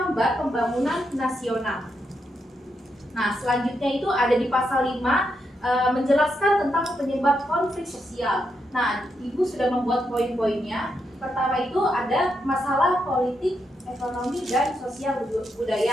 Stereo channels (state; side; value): normal; both; correlation 0.82